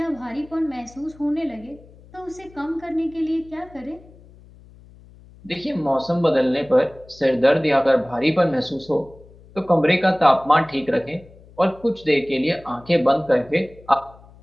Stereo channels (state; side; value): noise; left; hum, 24 dB below the sound